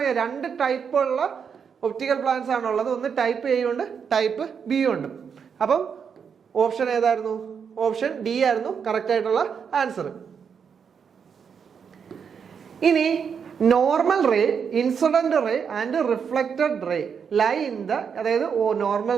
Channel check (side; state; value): left; quieter; 6.8 dB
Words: 2 ടൈപ്പുള്ള ഒപ്റ്റിക്കൽ പ്ലാന്റ്സ് ആണുള്ളത്. ഒന്ന് ടൈപ്പ് എ ഉണ്ട്, ടൈപ്പ് ബി ഉണ്ട്. അപ്പം ഓപ്ഷൻ ഏതായിരുന്നു? ഓപ്ഷൻ ഡി ആയിരുന്നു കറക്റ്റ് ആയിട്ടുള്ള ആൻസർ. ഇനി normal ray, incident ray and reflected ray lie in the, അതായത് നോർമൽ